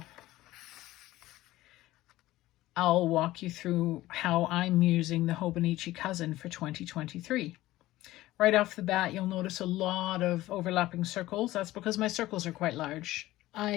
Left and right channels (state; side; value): quieter; right; 16.6 dB